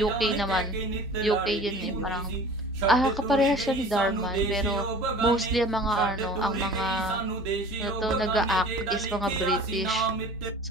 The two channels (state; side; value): normal; both; correlation 0.43